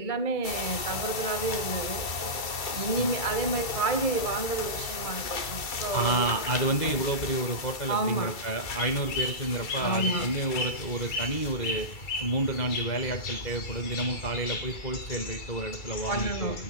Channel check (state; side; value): late; right; 2.3 ms